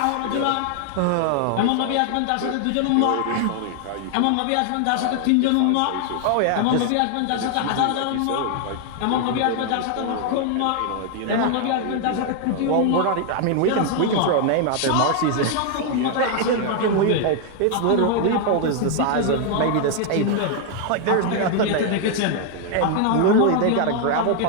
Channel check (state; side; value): different; both; correlation 0.00